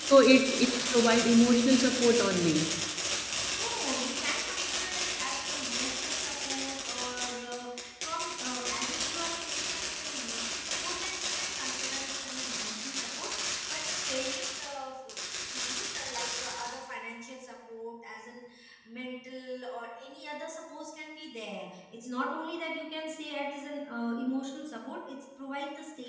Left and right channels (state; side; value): identical; both; correlation 1.00